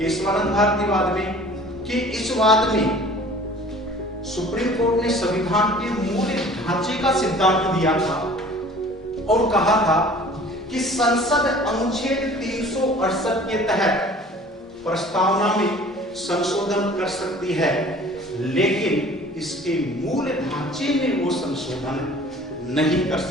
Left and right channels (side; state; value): both; normal; correlation 0.48